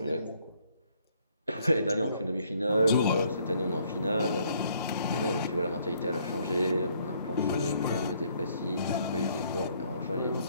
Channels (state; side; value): inverted; both; correlation -0.66